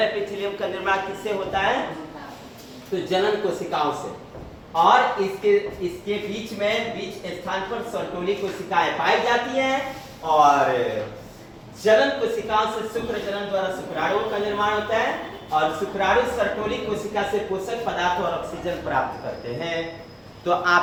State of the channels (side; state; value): both; identical; correlation 1.00